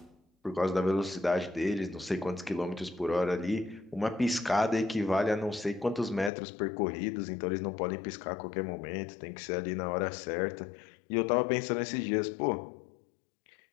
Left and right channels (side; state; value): right; drops out; at 6.3 s